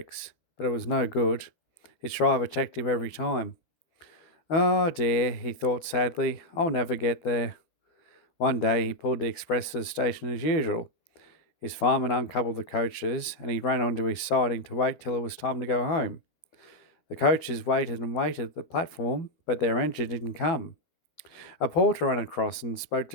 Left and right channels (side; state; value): right; late; 12 ms